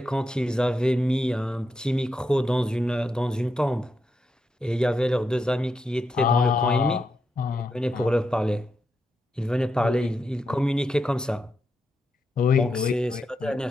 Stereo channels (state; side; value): normal; both; correlation 0.84